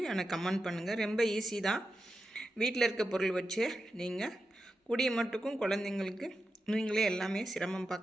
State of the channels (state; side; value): normal; both; correlation 0.90